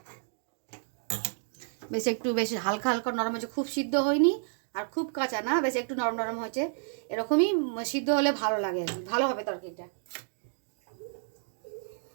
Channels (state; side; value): silent; left; digital silence